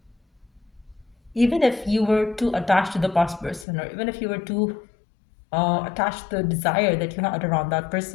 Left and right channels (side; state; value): right; drops out; at 3.7 s